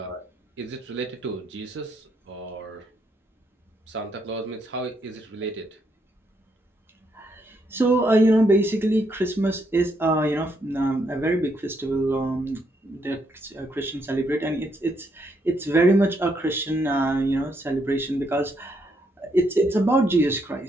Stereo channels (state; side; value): normal; both; correlation 0.75